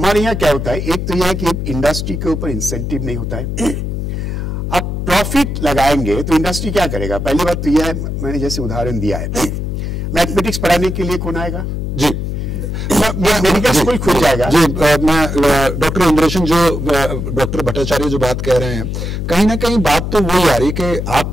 यहाँ क्या होता है, एक तो यह है कि इंडस्ट्री के ऊपर इंसेंटिव नहीं होता है। अब प्रॉफिट लगाएंगे तो इंडस्ट्री क्या करेगा? पहली बात तो यह है, मैंने जैसे उदाहरण दिया है, मैथमेटिक्स पढ़ाने के लिए कौन आएगा? जी, मेडिकल स्कूल खुल जाएगा। जी, मैं डॉक्टर इंद्रेशन डॉक्टर भट्टाचार्य जो बात कह रहे हैं, कहीं ना कहीं बात तो वही आ रही कि आप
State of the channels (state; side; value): noise; left; hum, 3 dB below the sound